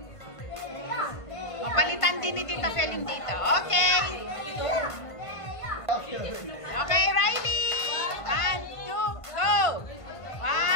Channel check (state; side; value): late; right; 1.5 ms